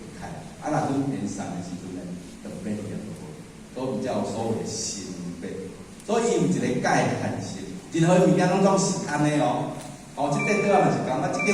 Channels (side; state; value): both; identical; correlation 1.00